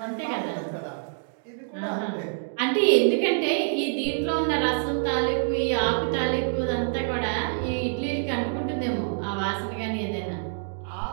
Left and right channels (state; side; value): silent; left; digital silence